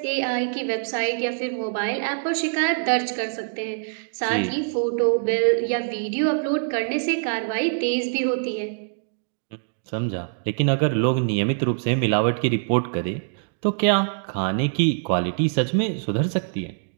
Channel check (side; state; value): left; silent; digital silence